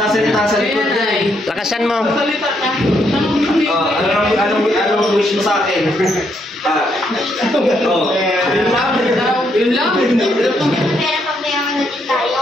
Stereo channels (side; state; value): both; normal; correlation 0.75